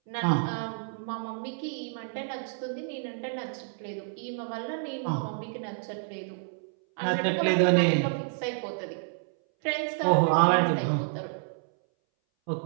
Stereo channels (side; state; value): left; silent; 58 dB below the other